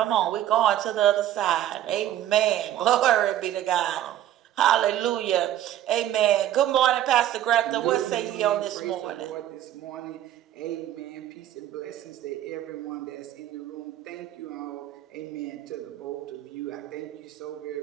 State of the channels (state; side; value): quieter; left; 12.3 dB